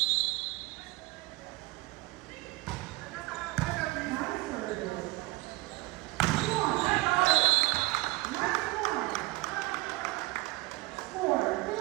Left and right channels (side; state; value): left; quieter; 21.9 dB